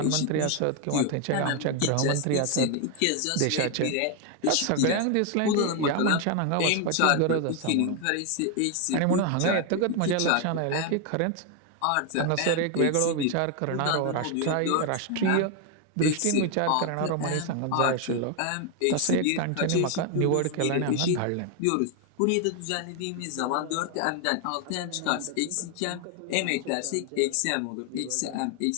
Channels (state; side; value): different; both; correlation 0.01